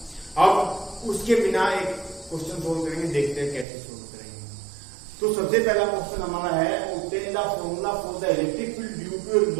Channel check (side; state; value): left; drops out; at 3.7 s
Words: अब उसके बिना एक क्वेश्चन सोल्व करेंगे, देखते हैं कैसे सोल्व करेंगे। तो सबसे पहला क्वेश्चन हमारा है obtain the formula for the electric field due to a